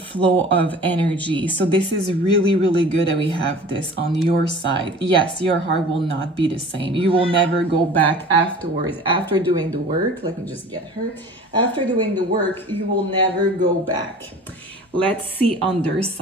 of energy. So this is really, really good that we have this on your side. Yes, your heart will not be the same. You will never go back afterwards. After doing the work, let me just get her. After doing the work, you will never go back. Let's see on their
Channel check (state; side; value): normal; both; correlation 0.43